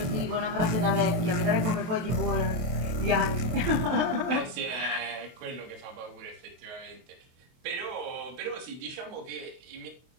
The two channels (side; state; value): left; late; 24 ms